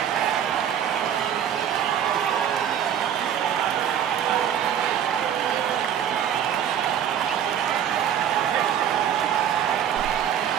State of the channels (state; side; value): quieter; left; 9.4 dB